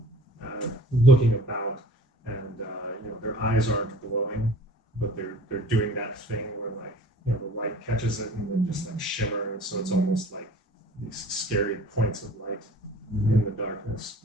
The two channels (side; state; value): both; normal; correlation 0.47